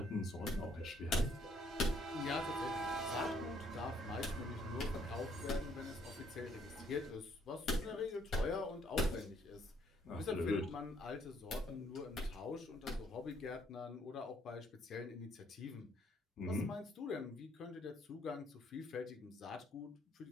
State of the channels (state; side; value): normal; both; correlation 0.66